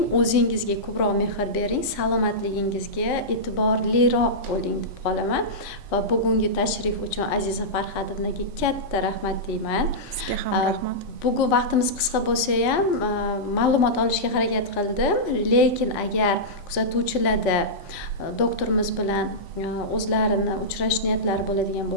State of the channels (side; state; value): both; normal; correlation -0.13